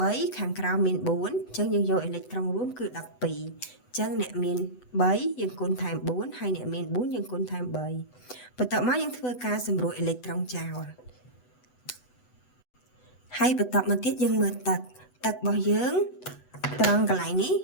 3ខាងក្រោមមាន4អញ្ចឹងយើងយកអេឡិចត្រង់រួមគឺ12អញ្ចឹងអ្នកមាន3យើងគុណថែម4ហើយអ្នកមាន4យើងគុណថែម3បន្តមកយើងធ្វើការសម្រួលអេឡិចត្រង់ចោលហើយបន្តមកទៀតយើងមើលទឹករបស់យើងត្រង់កន្លែងនេះ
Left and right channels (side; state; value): right; late; 8.0 ms